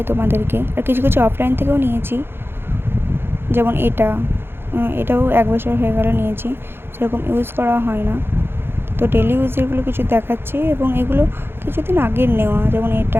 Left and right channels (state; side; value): late; left; 0.11 ms